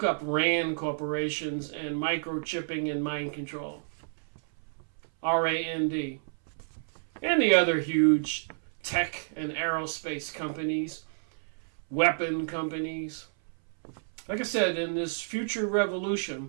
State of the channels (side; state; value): left; silent; 58 dB below the other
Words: up RAND corporations and microchipping and mind control. RAND. And the other huge tech and aerospace companies, weapon companies. Like I said, in this future